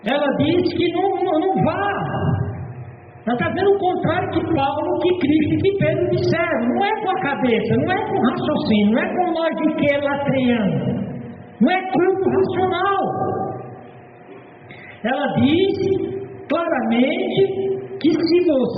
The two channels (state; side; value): identical; both; correlation 1.00